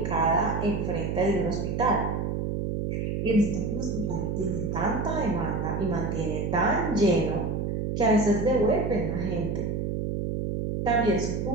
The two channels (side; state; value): right; noise; hum, 1 dB below the sound